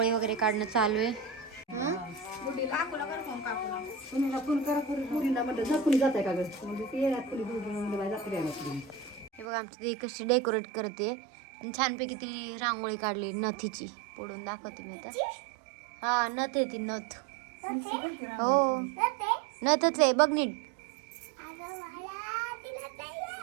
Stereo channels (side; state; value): left; drops out; at 9.5 s